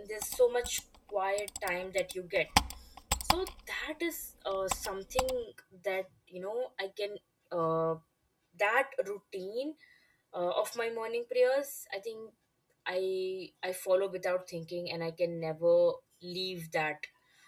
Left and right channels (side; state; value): both; identical; correlation 1.00